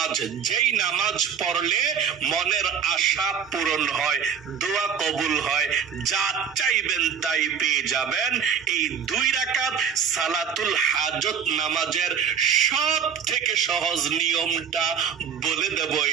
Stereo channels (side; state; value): left; quieter; 7.3 dB